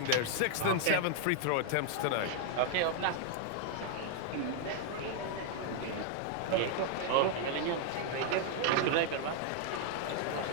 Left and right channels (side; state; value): both; different; correlation 0.00